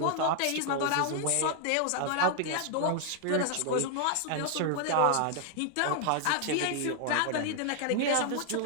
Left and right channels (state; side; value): different; both; correlation 0.00